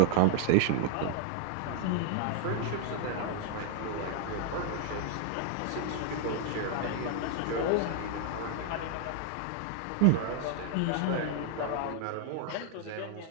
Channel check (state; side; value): different; both; correlation 0.00